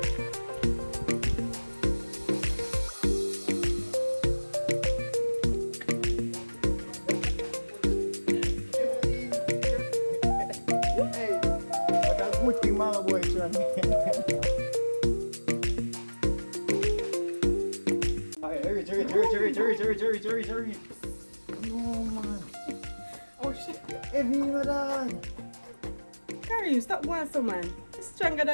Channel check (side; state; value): both; inverted; correlation -1.00